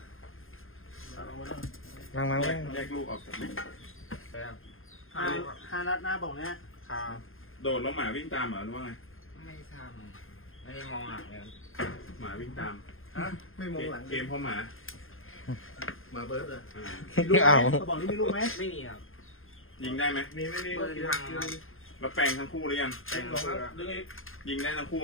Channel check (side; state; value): right; late; 0.60 ms